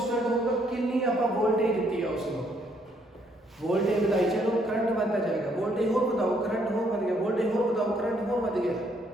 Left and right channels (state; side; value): normal; both; correlation 0.69